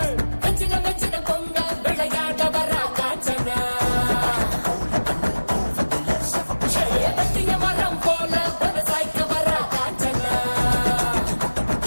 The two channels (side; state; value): both; inverted; correlation -1.00